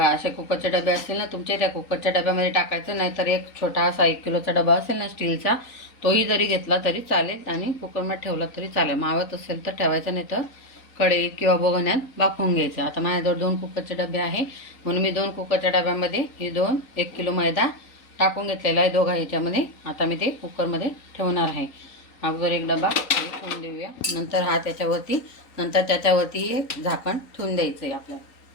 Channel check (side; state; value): right; late; 3.9 ms